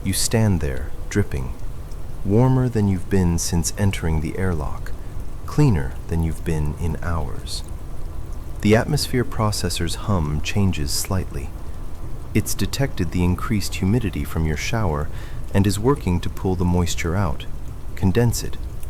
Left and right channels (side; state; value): both; identical; correlation 1.00